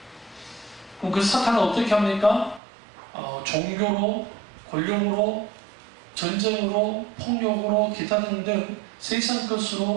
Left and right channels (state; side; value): drops out; left; at 2.6 s